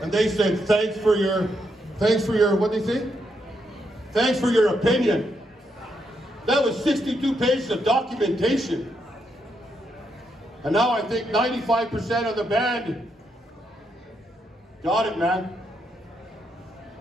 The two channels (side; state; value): both; normal; correlation 0.79